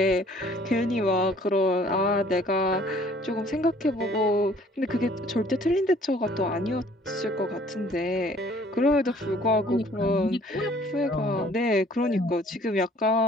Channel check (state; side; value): normal; both; correlation 0.56